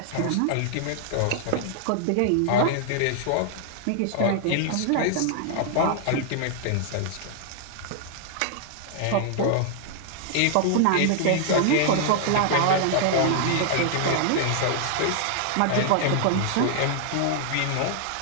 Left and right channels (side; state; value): both; different; correlation 0.00